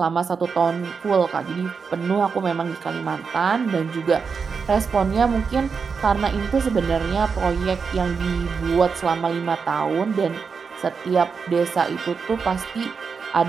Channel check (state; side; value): quieter; left; 5.5 dB